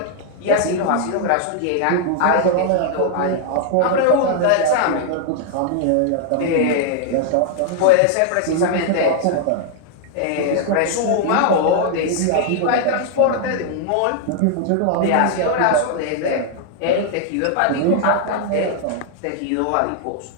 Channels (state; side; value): different; both; correlation 0.00